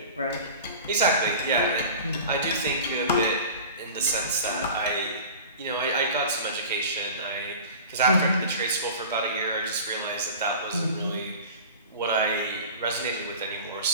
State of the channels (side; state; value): both; inverted; correlation -0.37